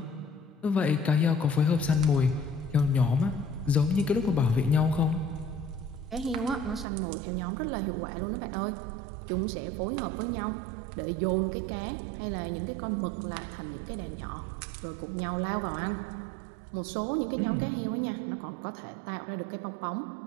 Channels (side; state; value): left; drops out; at 6.9 s